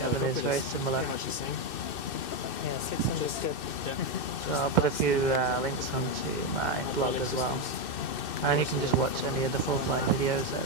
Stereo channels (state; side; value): late; right; 2.6 ms